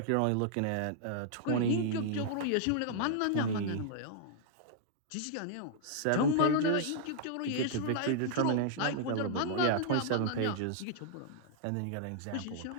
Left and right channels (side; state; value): both; different; correlation -0.01